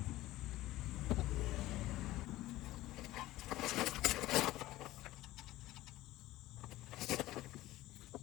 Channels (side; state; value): right; quieter; 16.6 dB